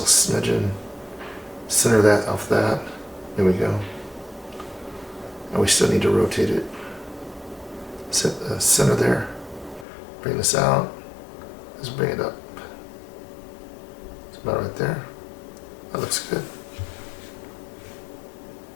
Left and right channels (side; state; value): right; drops out; at 9.9 s